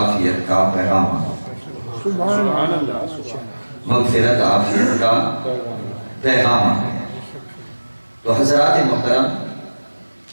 کا پیغام، سبحان اللہ۔ مغفرت عافیت کا پیغام آ گیا۔ تو حضرات محترم،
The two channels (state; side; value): inverted; both; correlation -1.00